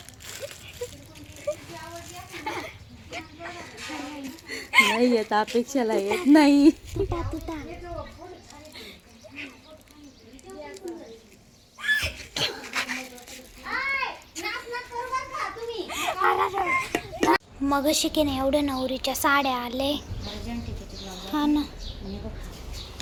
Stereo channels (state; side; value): identical; both; correlation 1.00